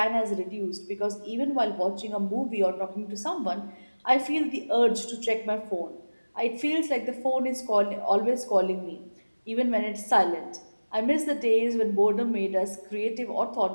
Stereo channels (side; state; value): both; inverted; correlation -1.00